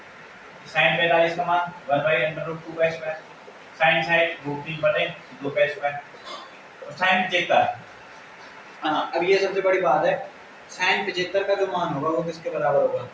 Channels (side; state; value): both; identical; correlation 1.00